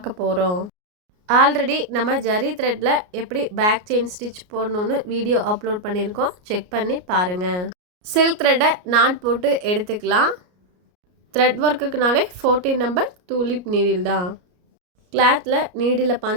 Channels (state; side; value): late; left; 33 ms